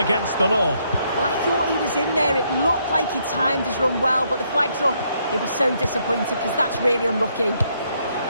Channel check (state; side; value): inverted; both; correlation -0.73